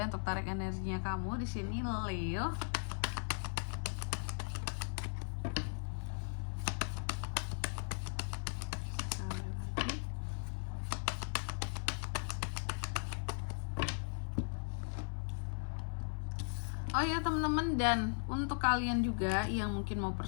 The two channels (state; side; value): silent; right; 52 dB below the other